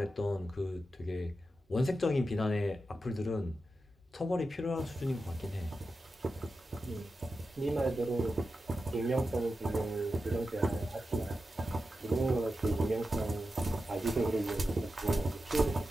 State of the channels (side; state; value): both; normal; correlation 0.90